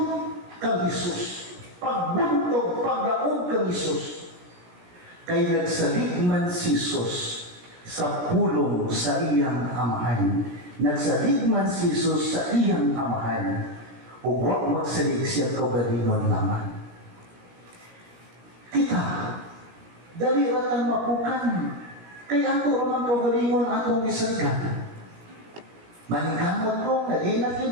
kang Isus, pagbuntog, pagdaog kang Isus, kay nagsaligman si Isus sa pulong sa iyang amahan. Nagsaligman si Isus sa iyang amahan, o huwag magsalig siya kaugalingon lamang. Kita, dali ratang mapukan, kaya ato ramang kaugalingon atong gisagkan. Manigamot ko nga di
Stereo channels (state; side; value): late; left; 17 ms